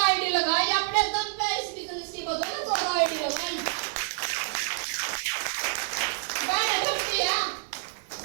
आईडी लगाई अपने दम पे। इस बिजनेस की बदौलत 14 आईडी लगाई। मैंने डरती है,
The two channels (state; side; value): silent; left; digital silence